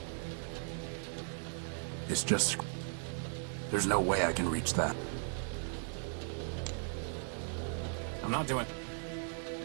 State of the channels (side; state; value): left; silent; 53 dB below the other